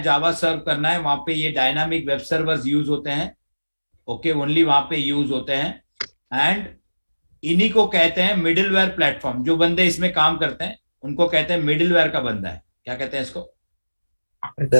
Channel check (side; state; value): both; inverted; correlation -1.00